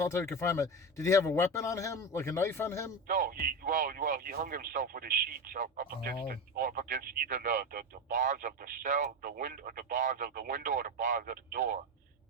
confinement? Did he have a weapon on him, like a knife on him? No, he hung himself with his sheets up against either the bars of the cell, the window, the bars of the window, or the bars of the door.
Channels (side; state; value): both; normal; correlation 0.19